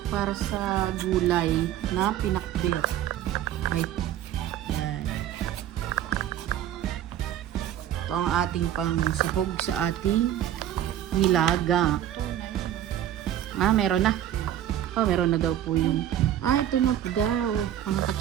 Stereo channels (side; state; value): left; quieter; 11.5 dB